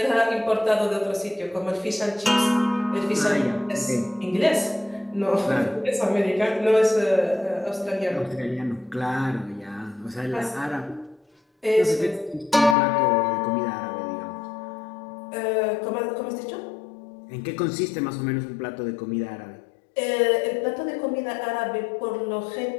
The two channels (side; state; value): right; drops out; at 12.8 s